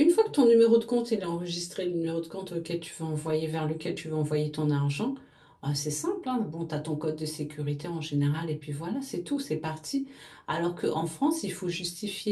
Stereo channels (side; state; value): both; identical; correlation 1.00